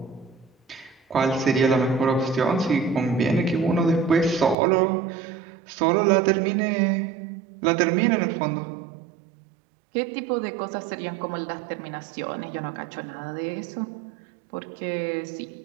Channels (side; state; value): left; drops out; at 4.5 s